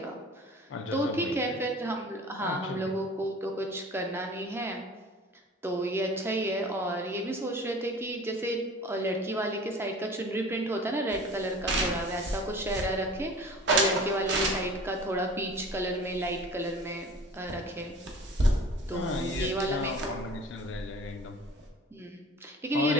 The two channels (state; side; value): normal; both; correlation 0.43